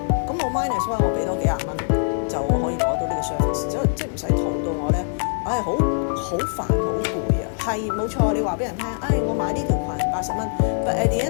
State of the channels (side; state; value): right; silent; digital silence